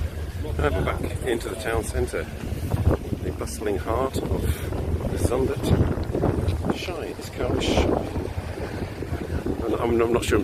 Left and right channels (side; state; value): both; identical; correlation 1.00